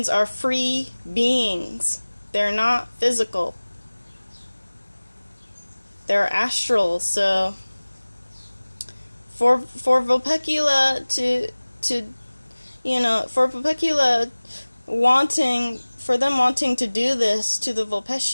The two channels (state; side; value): inverted; both; correlation -1.00